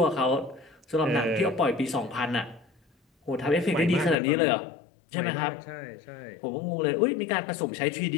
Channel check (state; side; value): drops out; right; at 4.2 s